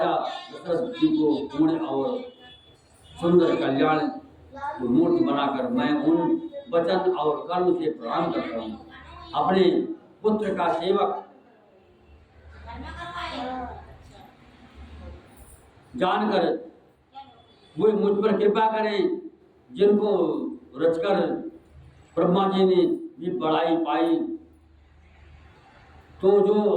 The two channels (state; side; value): identical; both; correlation 1.00